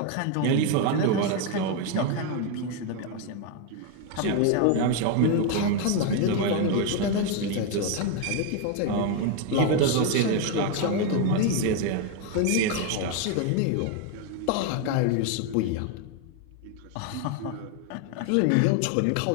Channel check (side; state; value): both; different; correlation 0.01